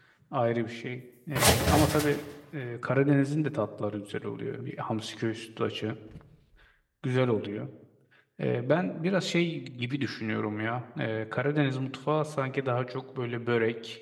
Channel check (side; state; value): both; identical; correlation 1.00